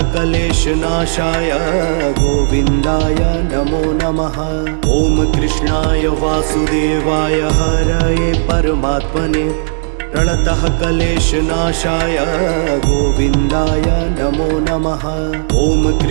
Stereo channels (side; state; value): left; silent; digital silence